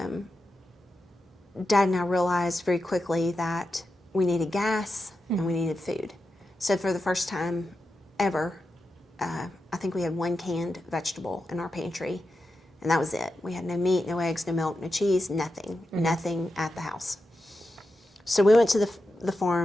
Dad and I realized very quickly that we needed gas and we needed food. So for the first time ever, I think we had one canned vegetable in our pantry, and that was it. We had no meat, no eggs, no milk, no cheese, nothing at the house. So we went to the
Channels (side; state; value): both; normal; correlation 0.89